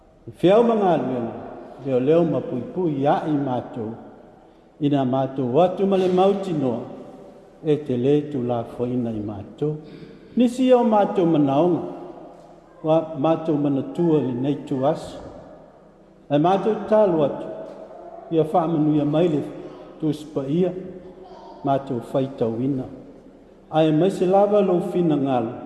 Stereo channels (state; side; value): identical; both; correlation 1.00